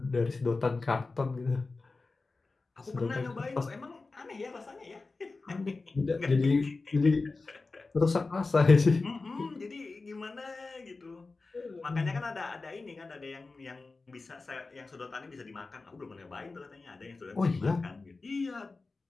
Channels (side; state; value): right; quieter; 3.7 dB